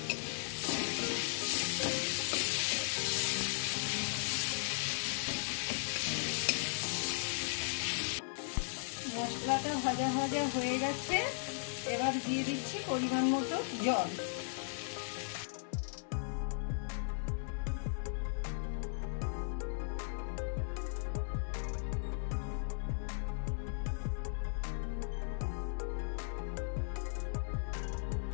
মশলাটা ভাজা ভাজা হয়ে গেছে। এবার দিয়ে দিচ্ছি পরিমাণ মতো জল।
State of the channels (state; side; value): silent; right; 53 dB below the other